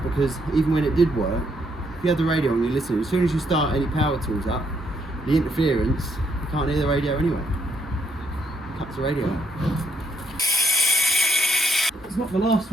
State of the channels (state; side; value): normal; both; correlation 0.73